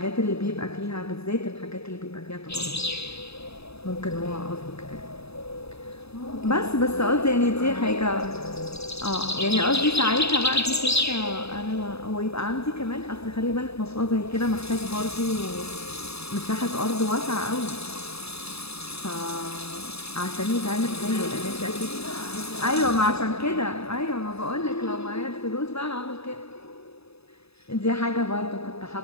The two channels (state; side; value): late; right; 0.79 ms